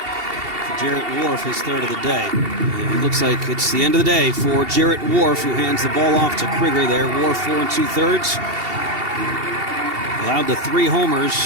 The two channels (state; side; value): late; left; 2.7 ms